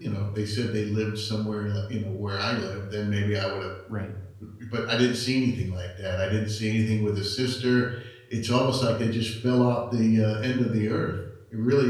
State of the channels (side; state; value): both; identical; correlation 1.00